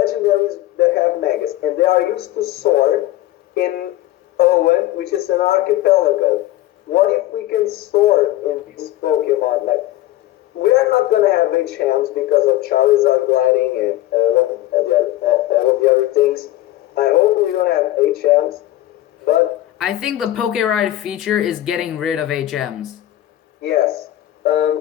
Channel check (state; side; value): quieter; right; 15.1 dB